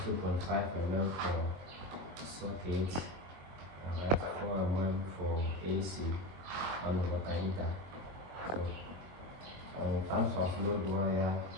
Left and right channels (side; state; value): left; late; 23 ms